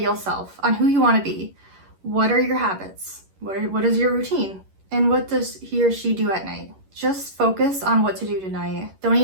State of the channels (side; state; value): left; late; 11 ms